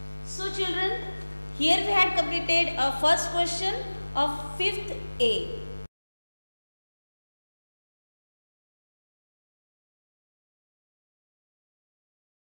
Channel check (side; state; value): both; inverted; correlation -1.00